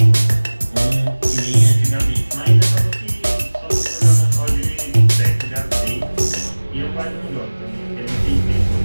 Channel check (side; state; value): both; inverted; correlation -1.00